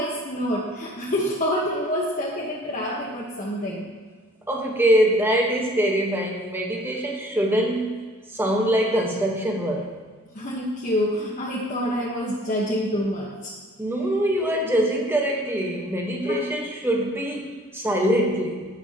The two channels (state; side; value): normal; both; correlation 0.54